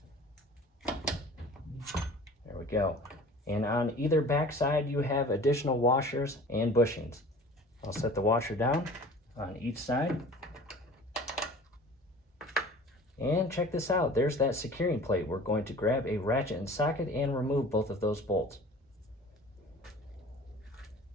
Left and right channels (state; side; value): normal; both; correlation 0.44